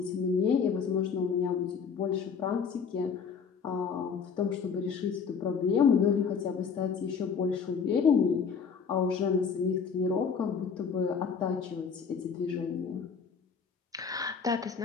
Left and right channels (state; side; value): quieter; right; 6.2 dB